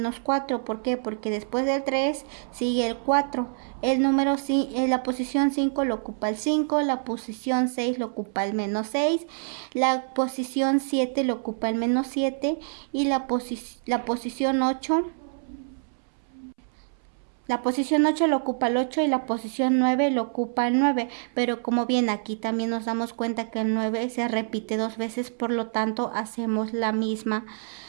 4. ¿Por qué? Porque después del 3 sigue el 4. El número en la posición 5 lo ocupa el 5, la posición 6 lo ocupa el menos 6, la posición 7 lo ocupa el menos 7 y la posición 8 lo ocupa el 8 y la posición 9 lo ocupa el 9, pero como bien aquí también nos damos cuenta que el 9 se repite 2 veces, por lo tanto hacemos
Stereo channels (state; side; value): silent; left; 61 dB below the other